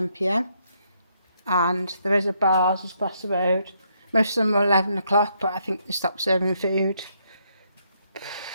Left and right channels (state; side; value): inverted; both; correlation -0.74